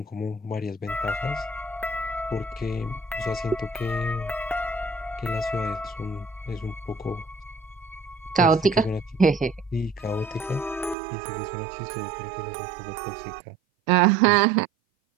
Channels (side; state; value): left; drops out; at 11.0 s